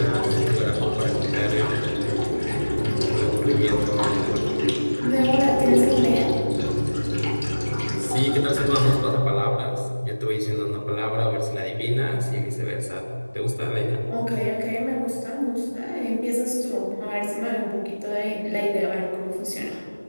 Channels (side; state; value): both; inverted; correlation -1.00